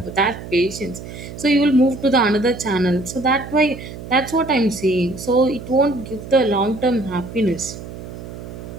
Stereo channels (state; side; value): noise; right; hum, 12 dB below the sound